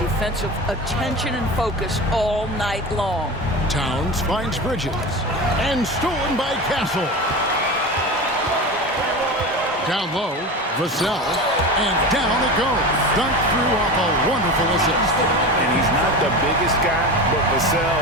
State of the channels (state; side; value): normal; both; correlation 0.28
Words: attention and focus all night long. Towns finds Bridges. And stolen by Castle. Down low, Vassell. And down it goes. Dunked through off a wonderful assist. And he's not the biggest guy, but Vassell